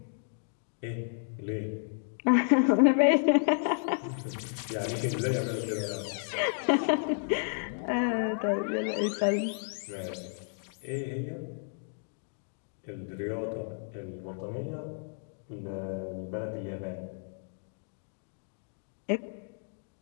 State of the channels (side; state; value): right; silent; digital silence